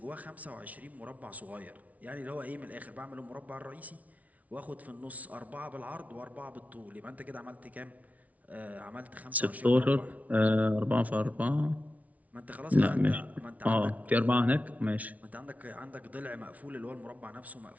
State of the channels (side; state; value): left; late; 0.070 ms